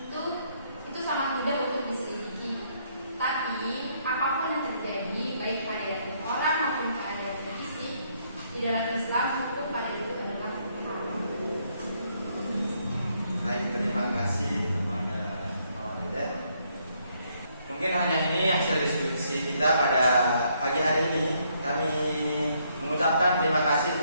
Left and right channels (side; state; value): both; inverted; correlation -0.72